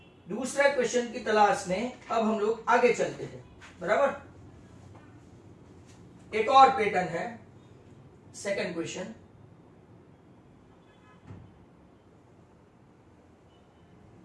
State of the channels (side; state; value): both; identical; correlation 1.00